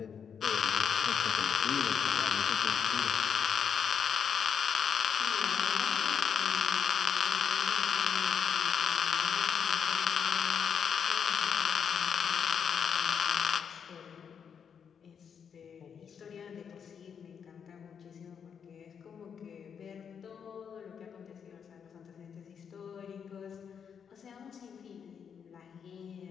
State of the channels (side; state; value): right; quieter; 7.3 dB